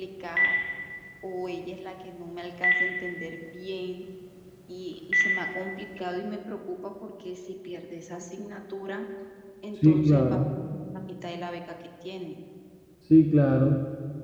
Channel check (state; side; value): identical; both; correlation 1.00